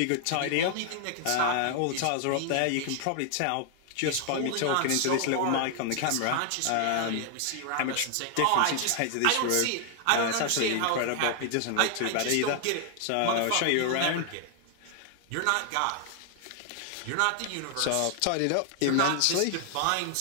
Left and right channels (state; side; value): different; both; correlation 0.00